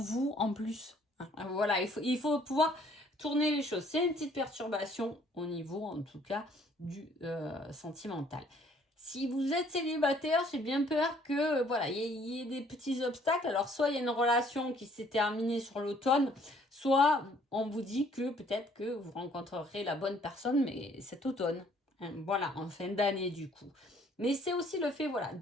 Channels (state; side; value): normal; both; correlation 0.61